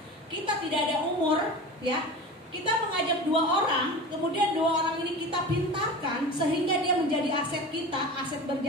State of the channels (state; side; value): normal; both; correlation 0.33